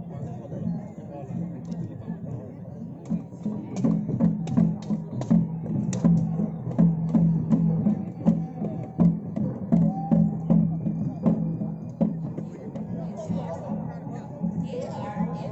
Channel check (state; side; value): identical; both; correlation 1.00